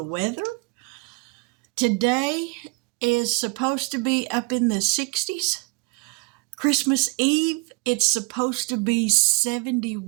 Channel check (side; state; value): left; quieter; 29.6 dB